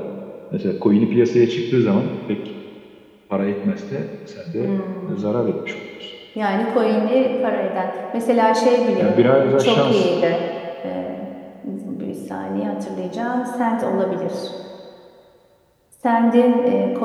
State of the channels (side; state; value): both; identical; correlation 1.00